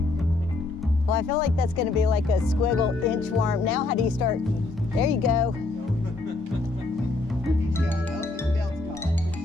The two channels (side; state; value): right; quieter; 3.3 dB